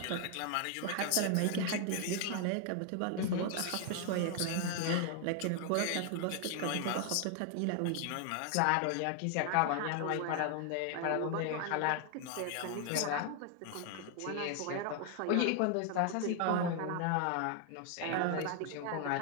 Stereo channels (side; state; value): both; different; correlation 0.00